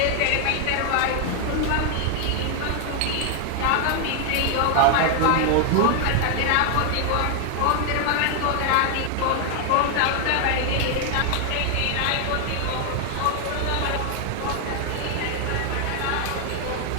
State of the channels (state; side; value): different; both; correlation 0.00